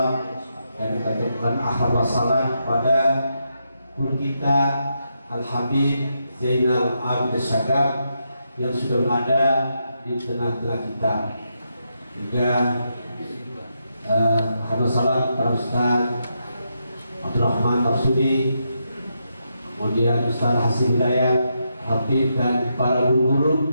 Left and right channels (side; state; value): both; inverted; correlation -0.82